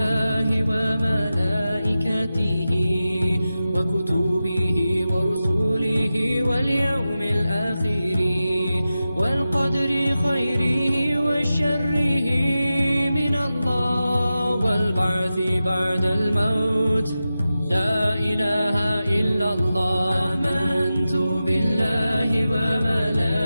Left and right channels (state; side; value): inverted; both; correlation -0.93